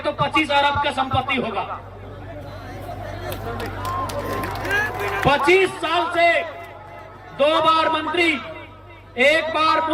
25 अरब का संपत्ति होगा। 25 साल से 2 बार मंत्री, 1 बार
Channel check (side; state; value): both; identical; correlation 1.00